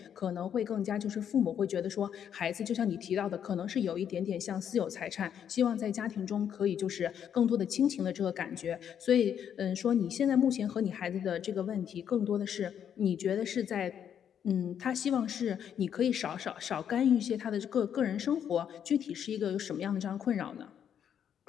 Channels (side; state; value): right; quieter; 8.8 dB